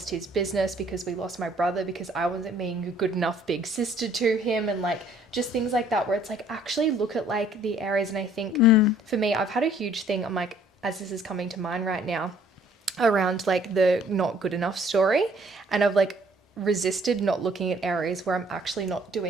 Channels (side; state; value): both; normal; correlation 0.59